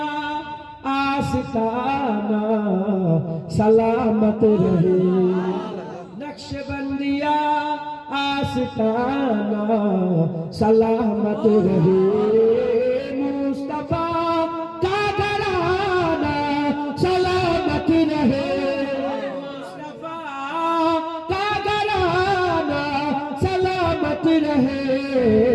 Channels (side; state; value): both; identical; correlation 1.00